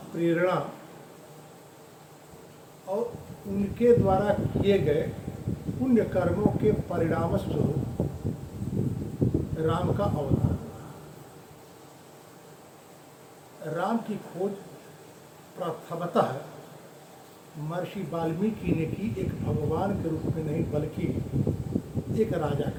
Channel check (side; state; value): both; identical; correlation 1.00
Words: प्रेरणा और उनके द्वारा किए गए पुण्य कर्मों के परिणाम स्वरूप राम का अवतार। राम की खोज प्रथमतः महर्षि वाल्मीकि ने की, एक भगवान के रूप में नहीं बल्कि एक राजा